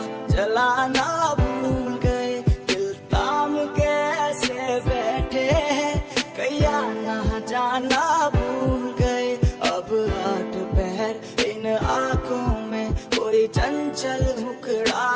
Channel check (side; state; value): both; identical; correlation 1.00